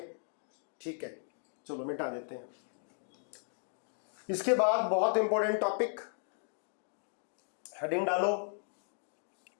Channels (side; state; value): right; silent; digital silence